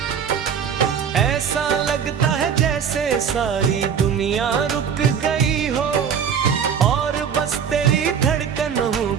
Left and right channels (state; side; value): quieter; left; 7.4 dB